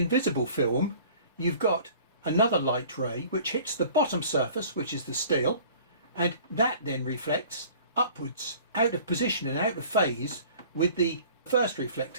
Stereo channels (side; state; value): both; inverted; correlation -0.49